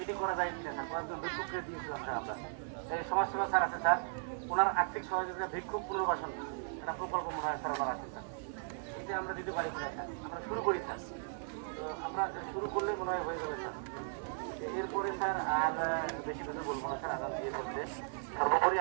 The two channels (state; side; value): silent; left; 53 dB below the other